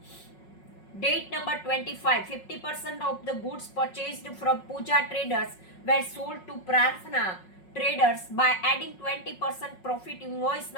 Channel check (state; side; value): late; right; 5.4 ms